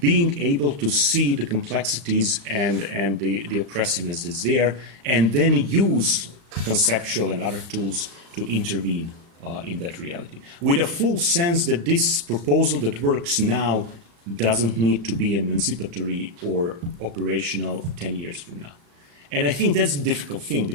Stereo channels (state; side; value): late; left; 35 ms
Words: being able to see the complexities and the oppressiveness that's there, and then use conceptual and other tools to intervene in that reality, with a full sense that this proposal that works now doesn't need to be emancipatory or operational 10 years from now. And I think that's the difficult thing,